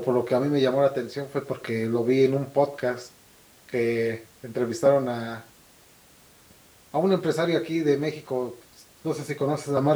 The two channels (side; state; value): both; identical; correlation 1.00